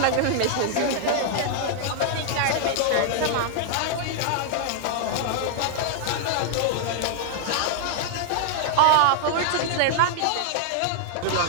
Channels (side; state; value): both; different; correlation -0.01